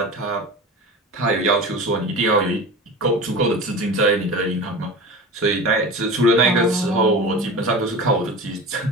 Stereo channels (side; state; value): both; normal; correlation 0.32